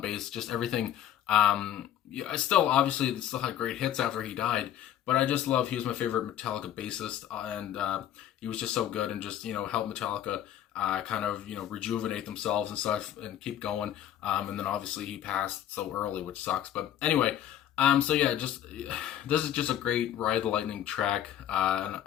bass. Just everything. Yeah, I still obviously still had great hits after he died, but I just love. He was my favorite Metallica bassist, and he was just so good and just helped Metallica kind of rejuvenate themselves and stuff and keep going. And then obviously he passed so early, which sucks. But anyway. So yeah, just this is just a great Ride the Lightning track, and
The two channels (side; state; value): right; quieter; 11.1 dB